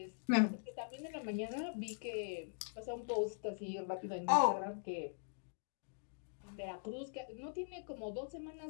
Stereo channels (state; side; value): silent; right; digital silence